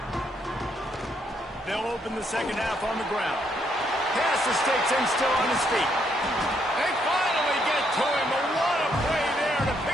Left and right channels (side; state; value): both; normal; correlation 0.73